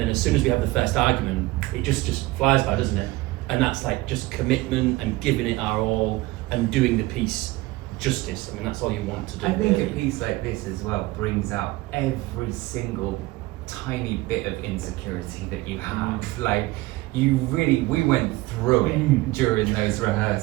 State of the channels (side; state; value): left; quieter; 19.8 dB